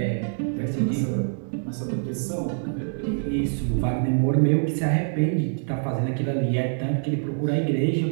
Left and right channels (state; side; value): silent; left; digital silence